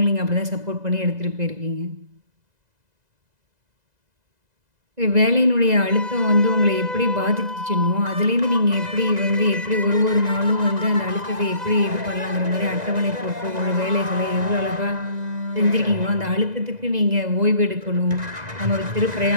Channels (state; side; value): late; left; 2.0 ms